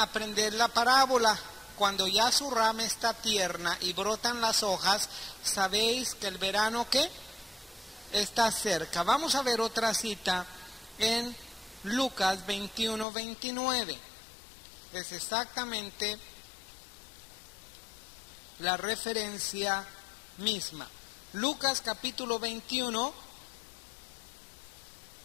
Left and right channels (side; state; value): right; drops out; at 13.1 s